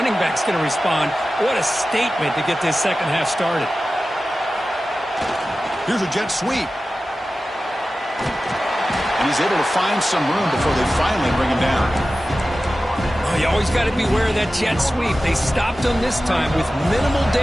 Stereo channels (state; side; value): normal; both; correlation 0.95